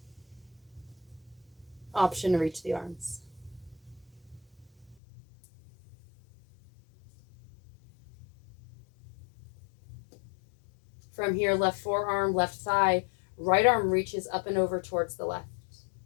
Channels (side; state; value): right; drops out; at 5.0 s